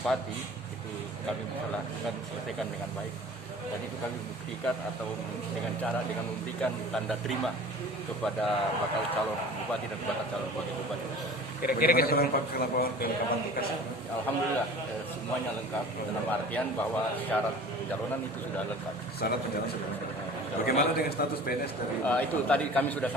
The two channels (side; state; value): both; normal; correlation 0.42